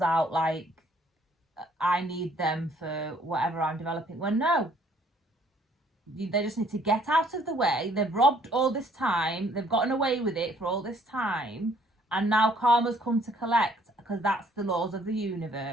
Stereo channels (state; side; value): normal; both; correlation 0.62